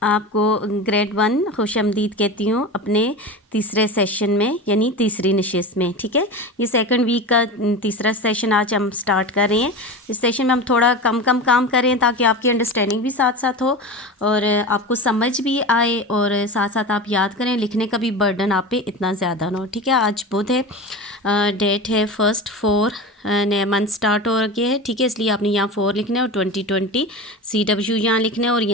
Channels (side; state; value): both; normal; correlation 0.28